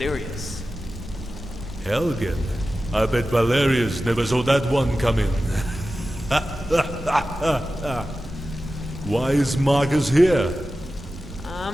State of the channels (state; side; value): normal; both; correlation 0.94